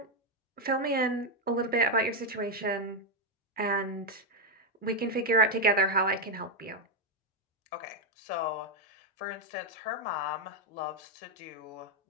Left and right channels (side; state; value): both; normal; correlation 0.03